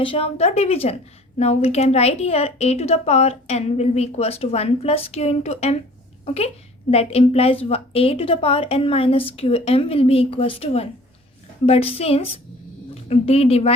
of the division. Now we can write here a to the power n will be equals to 1 plus q into m. Okay, that implies a to the power n minus qm will be equals to 1. But since d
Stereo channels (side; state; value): both; normal; correlation 0.49